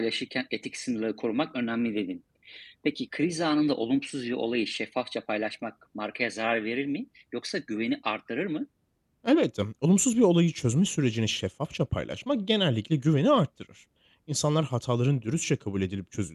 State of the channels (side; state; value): both; identical; correlation 1.00